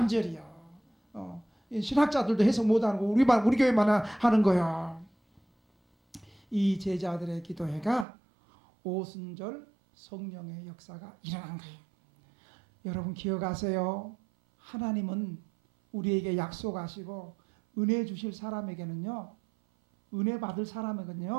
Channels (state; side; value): drops out; left; at 8.1 s